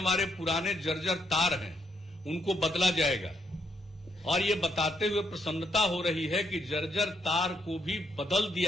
पुराने जर्जर तार हैं उनको बदला जाएगा, और ये बताते हुए प्रसन्नता हो रही है कि जर्जर तार को भी बदल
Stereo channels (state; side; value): normal; both; correlation 0.76